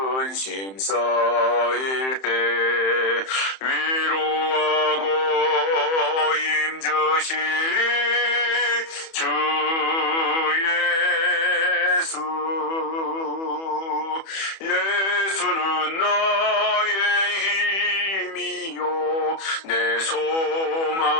쌓일 때 위로하고 힘주시리 주 예수. 예수는 나의 힘이요 내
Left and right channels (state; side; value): late; right; 31 ms